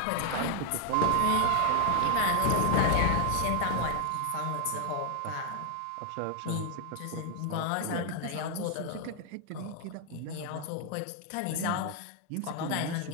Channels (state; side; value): different; both; correlation 0.00